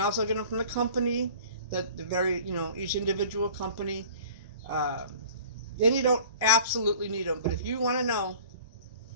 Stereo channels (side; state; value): both; inverted; correlation -0.46